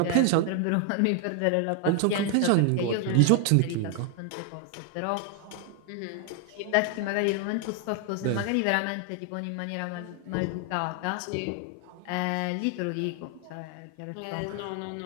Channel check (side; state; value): both; different; correlation 0.00